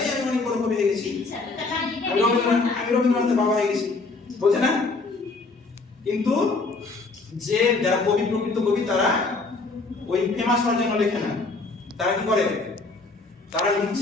অনেক বড় কবি হয়ে গেছি, আমি রবীন্দ্রনাথের বাবা হয়ে গেছি, বলছে না? কিন্তু যে যারা কবি, প্রকৃত কবি, তারা ওই ফেমাস হওয়ার জন্য লেখে না। তারা কি করে? তারা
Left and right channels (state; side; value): quieter; right; 3.7 dB